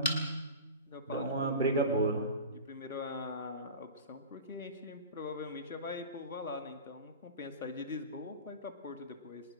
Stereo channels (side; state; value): both; inverted; correlation -0.32